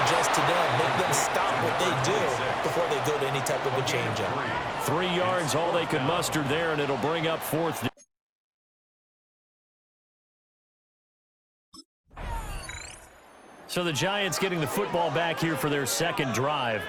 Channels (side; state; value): both; identical; correlation 1.00